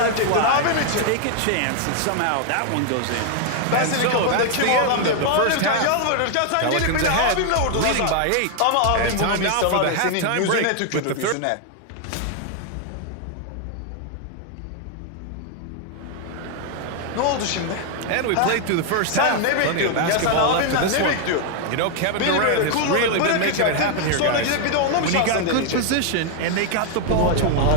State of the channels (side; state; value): both; different; correlation 0.00